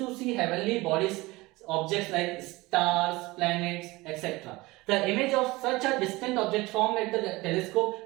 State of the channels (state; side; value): quieter; left; 21.3 dB